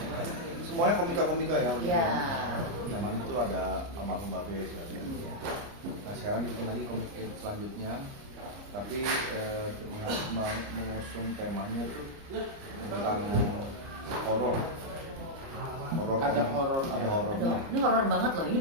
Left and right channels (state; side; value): late; left; 30 ms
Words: semuanya komika-komika ya. Iya. Zaman itu ada almarhum Babe. Nah sekarang dibikin lagi Comic 8 selanjutnya, tapi mengusung temanya tuh tentang horor. Ada horornya. Aduh, ini horor banget loh. Ini